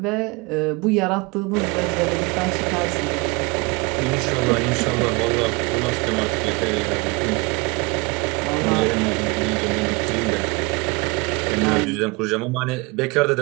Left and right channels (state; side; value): quieter; left; 27.0 dB